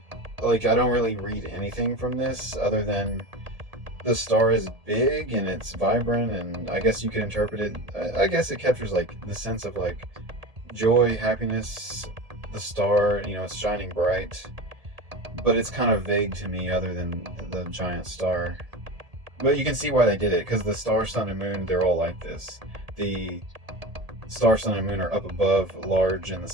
Like, I don't really read anything from this other than the star is big and it's vibrant, and I guess you could interpret it, I guess it captures like the sense of like joy, happiness, the star, you know, it's shining bright, but it's kind of vague to me other than the giant star. But you can see why they did it, because the star, sun, and moon, they're all like this. The star, sun, and moon are up above, large in the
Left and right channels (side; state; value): left; late; 1.8 ms